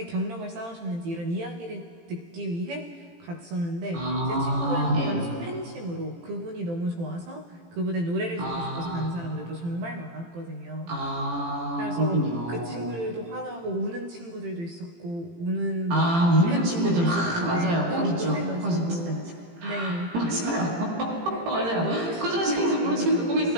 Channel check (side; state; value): left; late; 18 ms